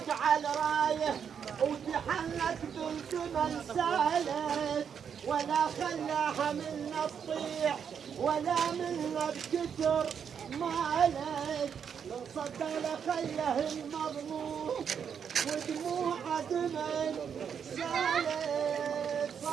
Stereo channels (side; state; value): left; quieter; 7.5 dB